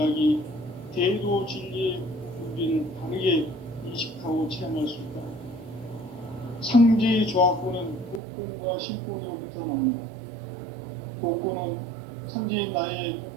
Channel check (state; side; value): drops out; left; at 8.2 s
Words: 대도 진리의 문제를 바르게 인식하고 체험할 수 있다. 상제의 조화권은 복권과 신권으로부터 나온다. 복권은 상제인 나의